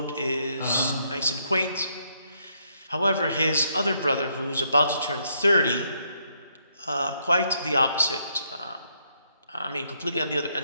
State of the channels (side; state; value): both; inverted; correlation -0.74